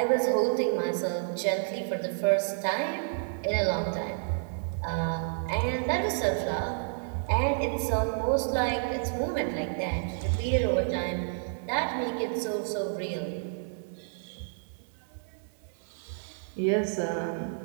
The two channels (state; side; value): silent; left; digital silence